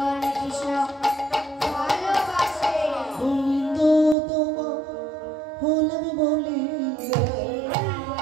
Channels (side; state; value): left; drops out; at 4.2 s